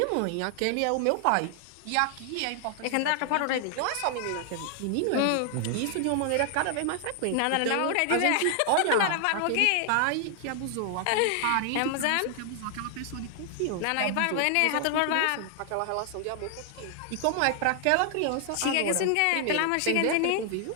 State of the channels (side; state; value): both; different; correlation 0.00